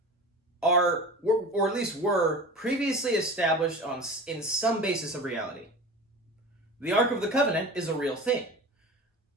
are, or at least were, previously established in some basis of reality. The Ark of the Covenant is a real thing.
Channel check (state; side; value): normal; both; correlation 0.34